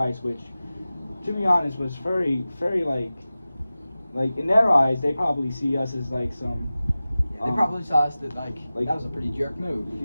which, to be honest, was very, very like in their eyes, they probably see us as like some. Yeah, they probably saw us that like like- that was a pretty jerk move.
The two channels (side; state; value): both; inverted; correlation -0.96